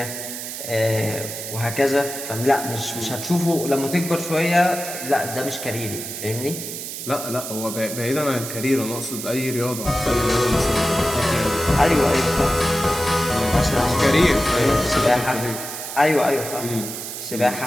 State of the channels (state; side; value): noise; right; hiss, 8 dB below the sound